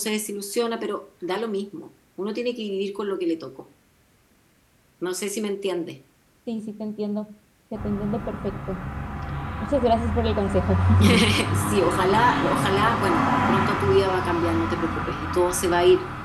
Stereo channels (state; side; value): identical; both; correlation 1.00